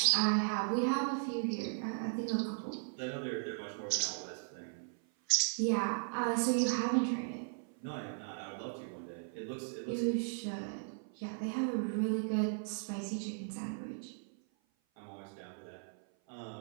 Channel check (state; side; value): silent; left; 53 dB below the other